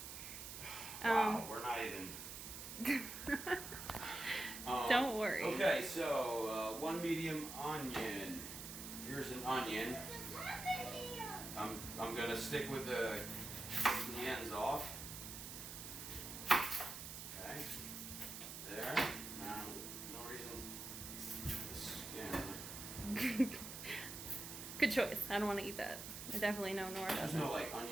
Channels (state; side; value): noise; right; hiss, 8 dB below the sound